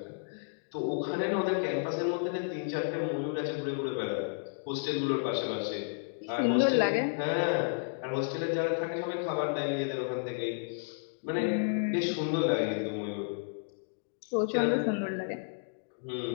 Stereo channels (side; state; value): right; silent; digital silence